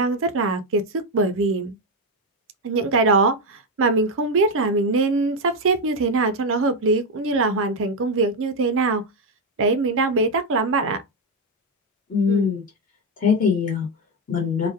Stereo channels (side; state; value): both; normal; correlation 0.07